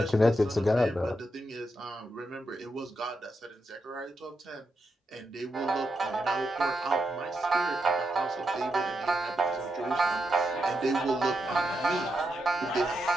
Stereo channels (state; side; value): normal; both; correlation 0.84